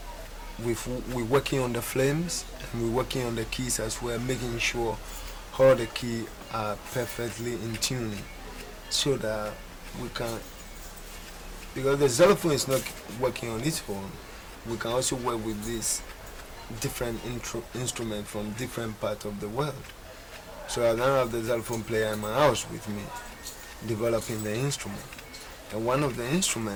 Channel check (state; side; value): identical; both; correlation 1.00